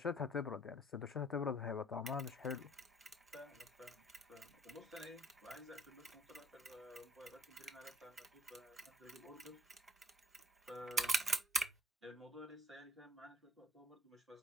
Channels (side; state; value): both; normal; correlation 0.60